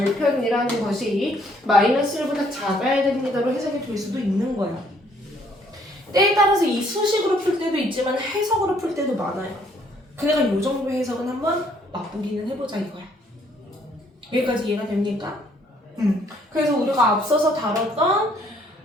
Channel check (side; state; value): both; normal; correlation 0.65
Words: 것이 마이너스 1보다 작아야 됩니다로 해석이 될 수도 있는 거야. 때에 따라서 이 수식으로 풀 때도 있지만 해석으로 풀 때도 많아요. 그러니까 이 정도 해석은 한번 맛보기는 해보자 이거야. 여기까지 이해가 됩니까? 그래서 우리가 앞서서 다뤘던